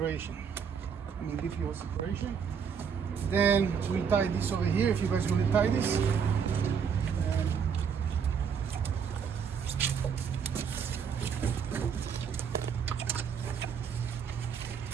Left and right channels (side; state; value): left; quieter; 7.0 dB